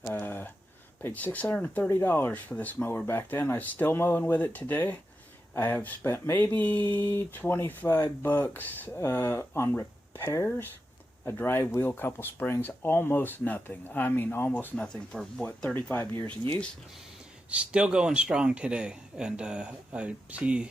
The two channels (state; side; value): normal; both; correlation 0.89